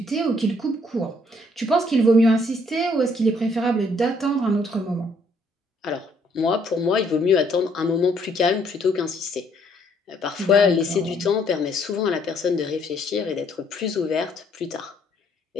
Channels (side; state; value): both; normal; correlation 0.66